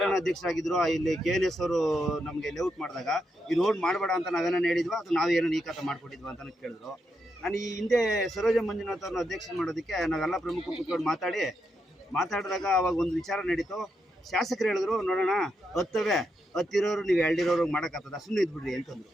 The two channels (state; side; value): normal; both; correlation 0.83